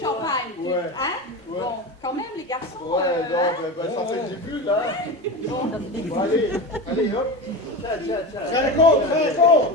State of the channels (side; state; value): both; normal; correlation 0.24